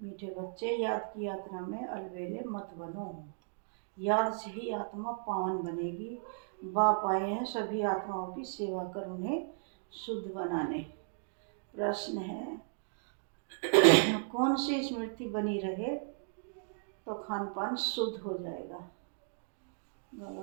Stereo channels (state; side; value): silent; left; digital silence